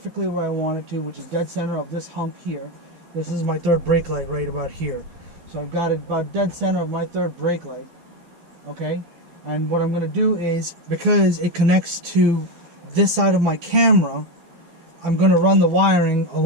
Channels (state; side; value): late; left; 12 ms